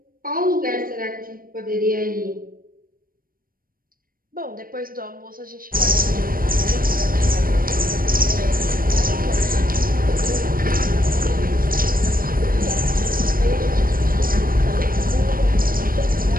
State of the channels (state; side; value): late; left; 0.41 ms